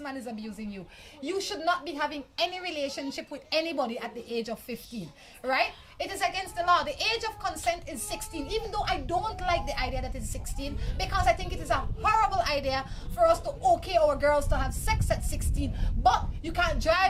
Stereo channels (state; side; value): identical; both; correlation 1.00